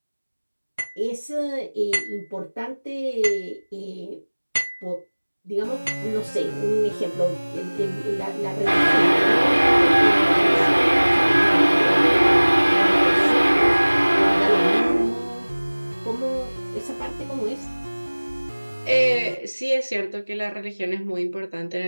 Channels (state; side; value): inverted; both; correlation -1.00